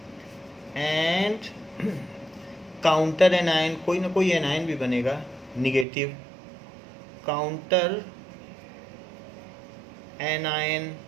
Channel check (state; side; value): drops out; left; at 5.9 s